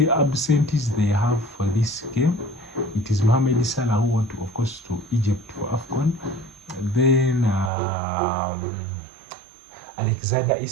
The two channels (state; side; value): drops out; left; at 7.7 s